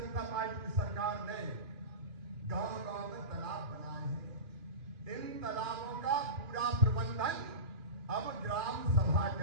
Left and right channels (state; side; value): late; left; 2.7 ms